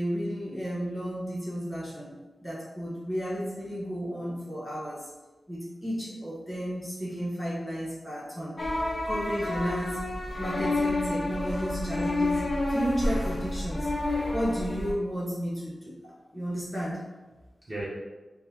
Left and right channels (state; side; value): normal; both; correlation 0.94